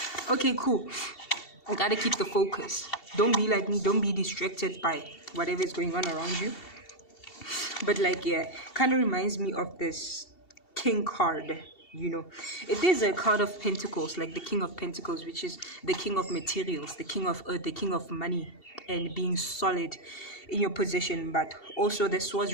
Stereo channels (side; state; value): right; late; 2.7 ms